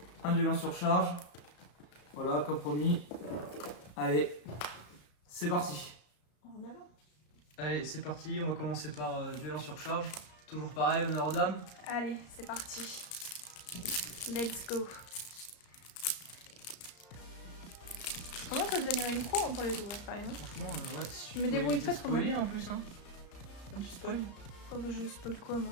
un duel en surcharge. Voilà, comme promis. Allez, c'est parti. En avant. Allez, c'est parti. On va commencer par duel en surcharge. Toujours pareil, honneur aux dames. Allez, c'est parti. Let's go. Comment ça devenir une pro pour les ouvrir quand même? Franchement, ouais, si Je me pouvais débrouille éviter pas de trop mal. spoiler en plus. Hein. Un petit spoil. Oh bah je spoil quoi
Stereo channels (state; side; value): late; right; 34 ms